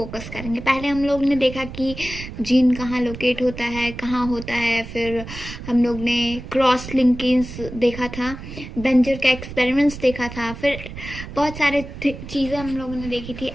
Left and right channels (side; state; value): right; noise; rumble, 11 dB below the sound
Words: करेंगे। पहले हम लोग ने देखा कि जीन कहाँ लोकेट होता है, कहाँ होता है, फिर हम लोग ने क्रॉस लिंकेज देखा था, बेंजर का एक्सपेरिमेंट्स देखा था, फिर बहुत सारे चीज़ें हम लोगों ने देखी थी।